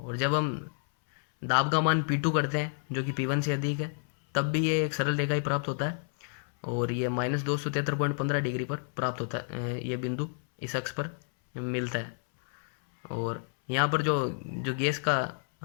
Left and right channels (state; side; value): silent; right; 58 dB below the other